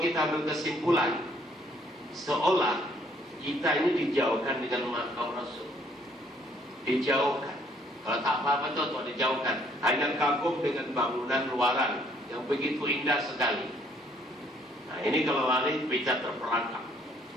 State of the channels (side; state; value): both; normal; correlation 0.64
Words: kita berkesimpulan, seolah kita ini dijauhkan dengan makam Rasul. Dijauhkan. Kalau tak apa-apa tuh dijauhkan. Hanya kagum dengan bangunan luaran yang begitu indah sekali. Nah ini kalau lari bisa terperangkap.